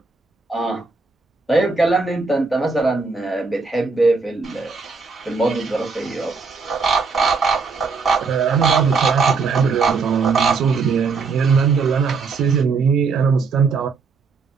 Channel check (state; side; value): quieter; left; 4.6 dB